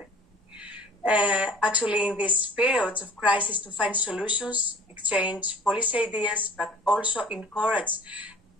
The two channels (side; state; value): both; normal; correlation 0.47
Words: Actually, in these periods of crisis, to find solutions, exchange policy ideas, but also encourage